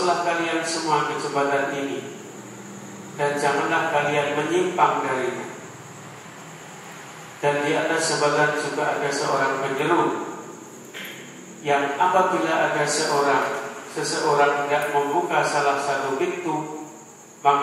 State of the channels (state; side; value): identical; both; correlation 1.00